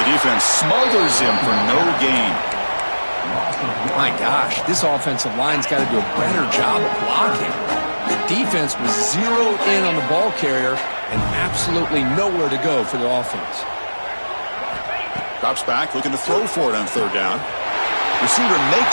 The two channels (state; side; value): inverted; both; correlation -1.00